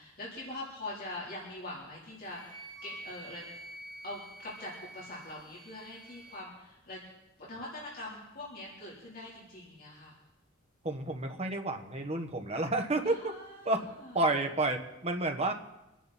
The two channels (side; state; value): both; normal; correlation 0.15